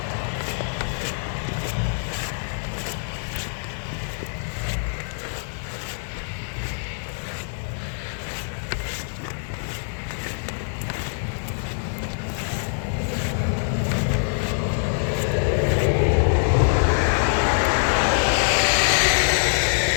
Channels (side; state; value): right; silent; digital silence